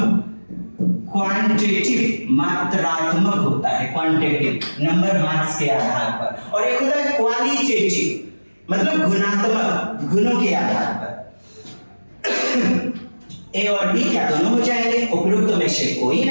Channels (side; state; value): both; inverted; correlation -1.00